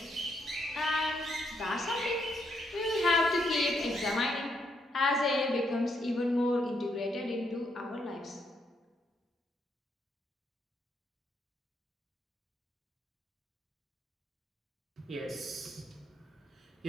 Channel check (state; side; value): normal; both; correlation 0.76